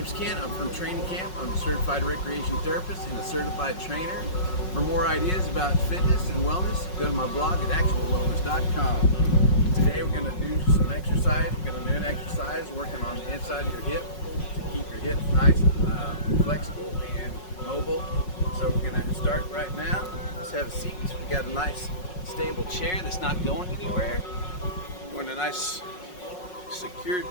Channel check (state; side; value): late; right; 5.5 ms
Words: Ken. I'm from Training Camp. I'm a certified recreation therapist and a certified trainer. For more ideas about fitness and wellness, go to my blog at actualwellness.com. Today we're going to do some exercise. We're going to do an exercise working on the inside of your hip to keep your hips nice and flexible and mobile. So we're going to start right now. Let's have a seat. We got a nice stable chair that's not going anywhere. We want a nice